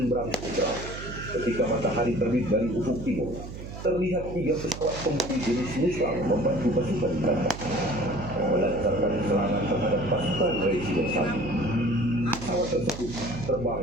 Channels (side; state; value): right; noise; hum, 10 dB below the sound